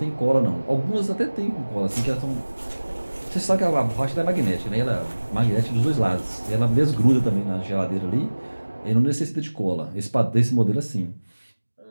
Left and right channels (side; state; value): both; inverted; correlation -1.00